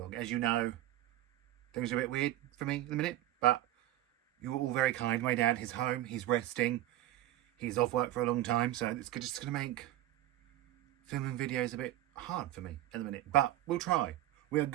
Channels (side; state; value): left; quieter; 14.3 dB